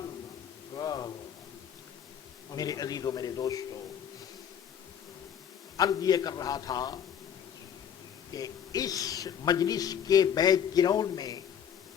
میرے عزیزوں میرے دوستو، عرض یہ کر رہا تھا کہ اس مجلس کے بیک گراؤنڈ میں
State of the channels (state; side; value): quieter; right; 8.7 dB